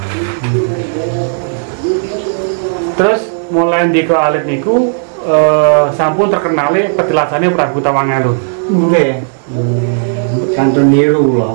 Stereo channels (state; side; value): silent; left; digital silence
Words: Terus mulai ndika alit niku sampun terkenale petilasannya Prabu Tawangalun. Nggih. Santun niru